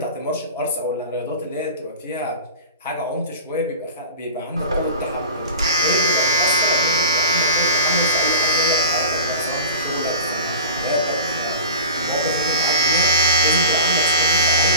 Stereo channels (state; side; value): inverted; both; correlation -0.36